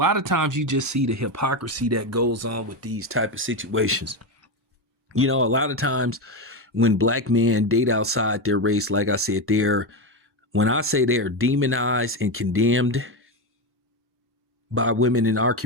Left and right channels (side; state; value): both; normal; correlation 0.13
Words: of times you just see the hypocrisy that goes on with these type of situations. A lot of times when black men date outside their race, like I said, when I say they're demonized and condemned by women in our